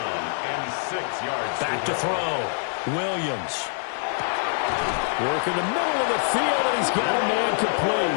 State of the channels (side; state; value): right; silent; 57 dB below the other